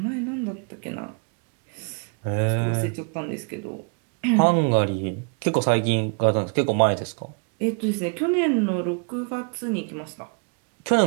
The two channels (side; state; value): left; quieter; 36.8 dB